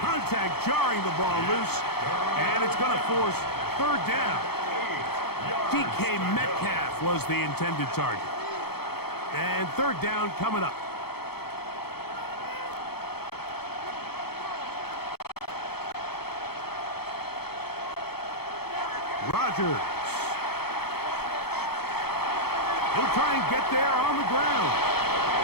Contact jarring the ball loose, and it's going to force 3rd down. DK Metcalf was the intended target. And 3rd down coming up. Chargers. He'll try and get there on the ground.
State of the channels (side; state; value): right; late; 0.96 ms